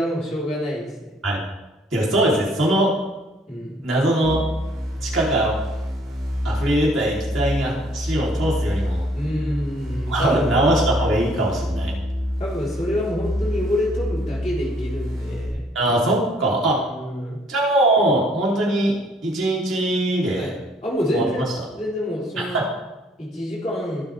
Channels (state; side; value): normal; both; correlation 0.62